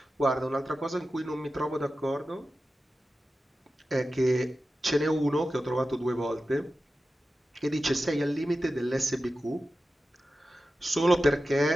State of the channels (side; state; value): both; normal; correlation 0.93